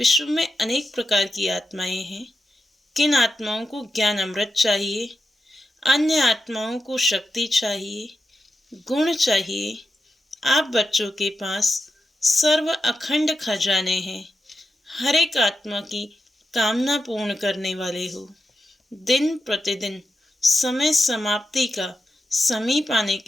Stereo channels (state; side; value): normal; both; correlation 0.88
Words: में अनेक प्रकार की आत्माएं हैं। किन आत्माओं को ज्ञान अमृत चाहिए, अन्य आत्माओं को शक्ति चाहिए, गुण चाहिए। आप बच्चों के पास सर्व अखंड खजाने हैं। हर एक आत्मा की कामना पूर्ण करने वाले हो। दिन प्रतिदिन समय समाप्ति का समीप आने